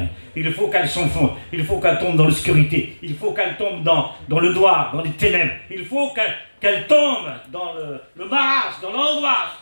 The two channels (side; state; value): both; inverted; correlation -1.00